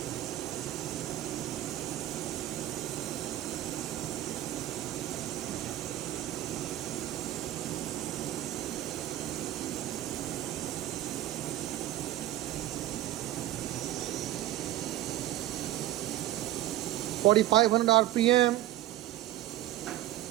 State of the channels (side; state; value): left; quieter; 14.3 dB